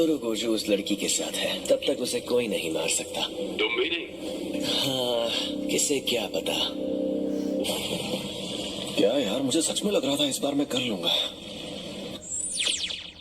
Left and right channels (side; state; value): both; identical; correlation 1.00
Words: गोजो उस लड़की के साथ है, तब तक उसे कोई नहीं मार सकता। तुम भी नहीं? हाँ, किसे क्या पता। क्या यार, मुझे सच में लग रहा था इस बार मैं कर लूंगा।